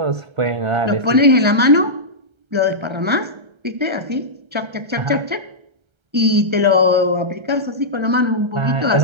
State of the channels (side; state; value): left; late; 1.3 ms